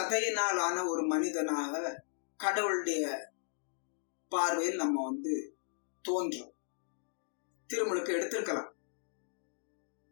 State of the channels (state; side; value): silent; right; digital silence